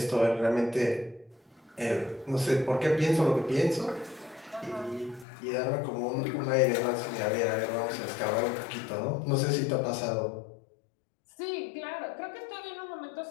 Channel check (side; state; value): right; drops out; at 5.2 s